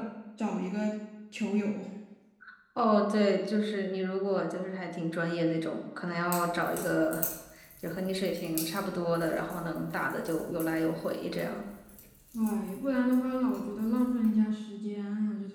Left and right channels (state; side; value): identical; both; correlation 1.00